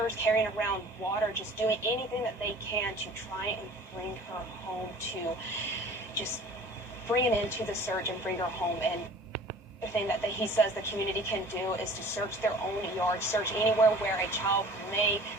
carrying around water, just doing anything that they can to try and bring her home, to just bring it into the search and bring her home. And the thing that he says the community can do is to search their own yard, search anywhere where a child may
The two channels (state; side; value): normal; both; correlation 0.46